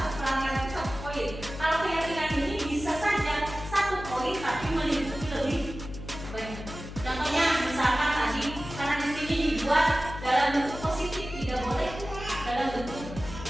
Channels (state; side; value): noise; left; hum, 11 dB below the sound